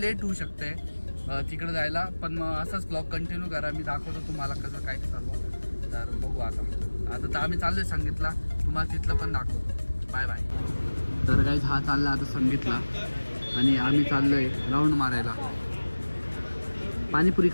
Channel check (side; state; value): both; inverted; correlation -1.00